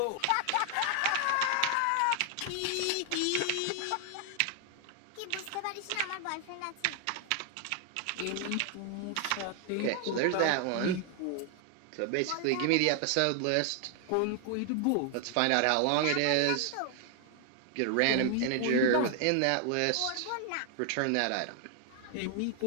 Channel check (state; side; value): different; both; correlation 0.00